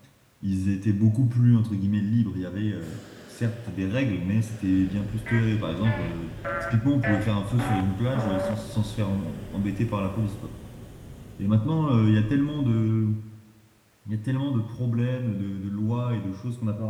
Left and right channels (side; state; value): both; identical; correlation 1.00